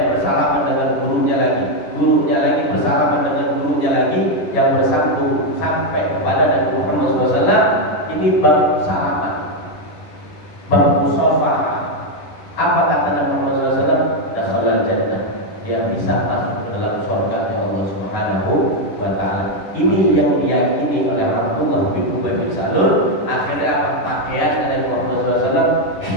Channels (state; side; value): late; right; 10 ms